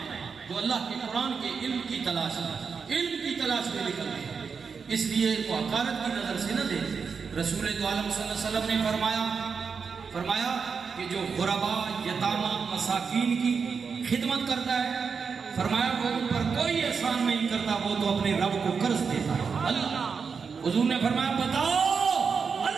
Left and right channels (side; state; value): left; quieter; 5.7 dB